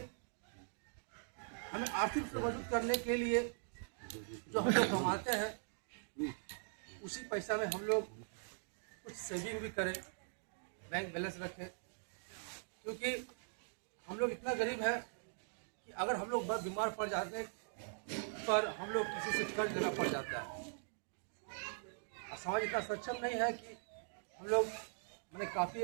आर्थिक से मजबूत करने के लिए जो हम लोग कमाते हैं उसी पैसा में हम लोग कुछ सेविंग भी करें, बैंक बैलेंस रखें, क्योंकि हम लोग इतना गरीब है कि अगर हम लोग बहुत बीमार पड़ जाते हैं पर हम लोग किसी से कर्ज लेना पड़ जाता है। और समाज इतना सक्षम नहीं है कि हम लोग मैंने काफ़ी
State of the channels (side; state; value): left; silent; digital silence